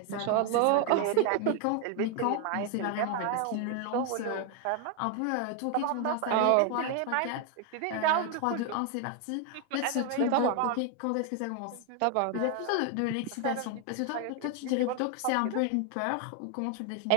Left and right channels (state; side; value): different; both; correlation 0.01